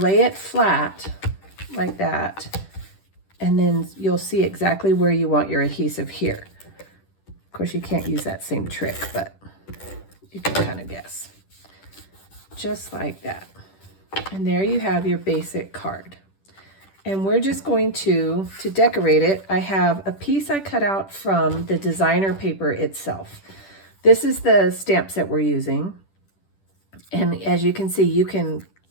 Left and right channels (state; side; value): late; right; 10 ms